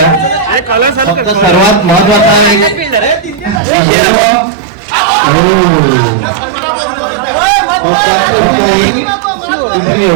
फक्त सर्वात महत्वाचा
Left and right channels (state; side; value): drops out; left; at 3.6 s